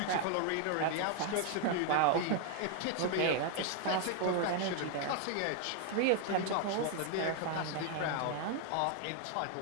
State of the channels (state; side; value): different; both; correlation 0.00